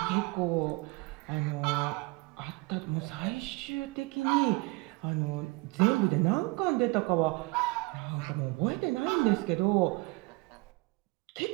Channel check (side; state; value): left; quieter; 25.1 dB